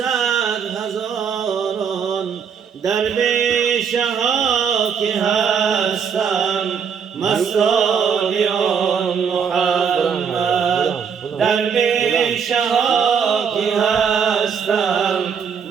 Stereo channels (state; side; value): quieter; left; 6.8 dB